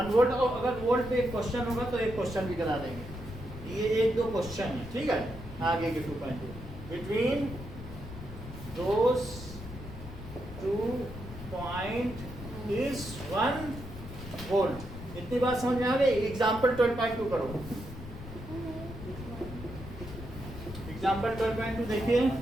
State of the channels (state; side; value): noise; left; rumble, 12 dB below the sound